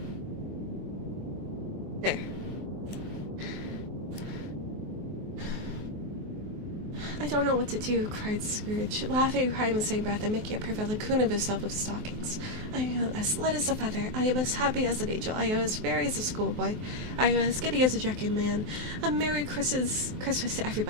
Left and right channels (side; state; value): left; late; 23 ms